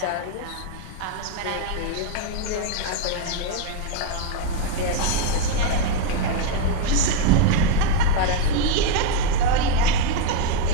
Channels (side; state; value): both; different; correlation 0.01